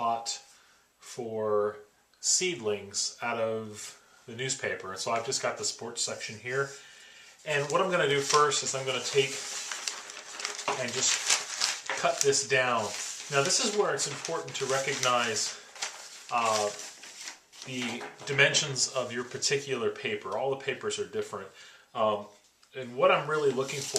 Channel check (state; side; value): identical; both; correlation 1.00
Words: for seedlings out of the newspaper. And so I've just got the sports section here. And what I'm going to do first is I'm going to take and just cut this down. Now this is where it's important to recognize the dimensions of your particular paper. All the papers are different. And what I'm really looking